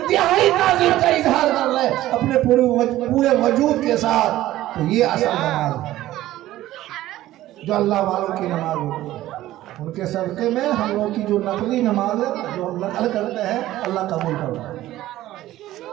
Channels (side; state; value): left; quieter; 15.0 dB